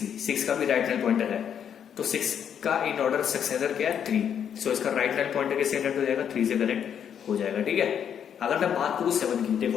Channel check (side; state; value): right; quieter; 8.5 dB